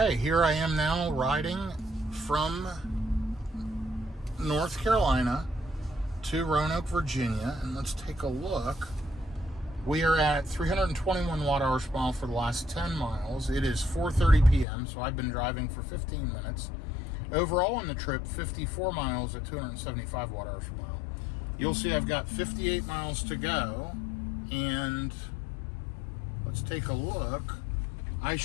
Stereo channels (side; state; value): right; drops out; at 14.7 s